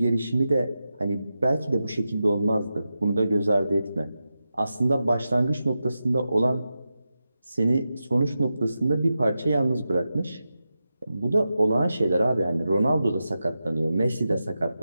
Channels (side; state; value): both; inverted; correlation -0.91